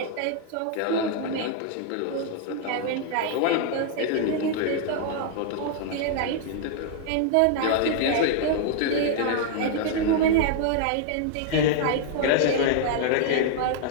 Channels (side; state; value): both; different; correlation -0.01